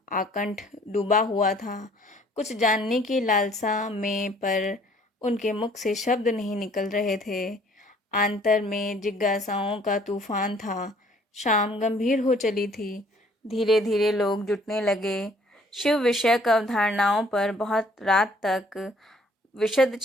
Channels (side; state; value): both; normal; correlation 0.59